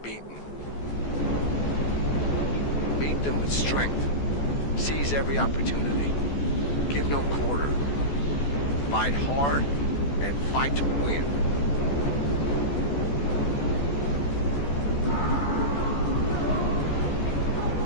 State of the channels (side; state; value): right; late; 14 ms